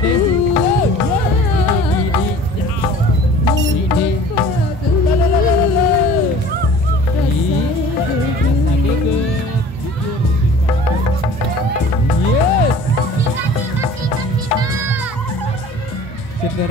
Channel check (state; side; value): normal; both; correlation 0.46